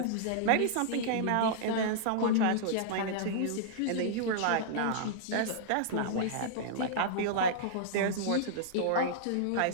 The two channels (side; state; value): both; different; correlation -0.02